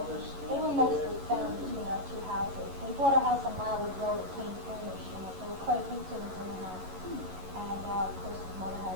were mostly found between our two houses. We bought a house on Mildwood Road that came furnished, and there were quite a few things in the house. And of course, his mother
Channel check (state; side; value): late; left; 11 ms